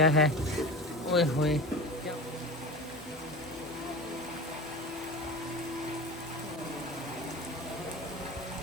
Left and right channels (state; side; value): normal; both; correlation 0.31